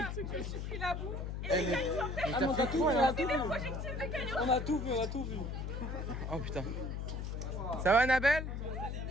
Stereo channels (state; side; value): noise; left; hum, 4 dB below the sound